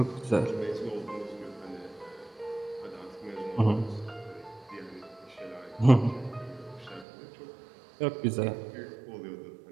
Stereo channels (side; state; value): left; drops out; at 7.1 s